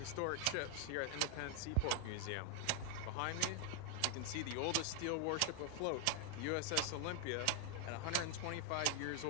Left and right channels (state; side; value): different; both; correlation 0.00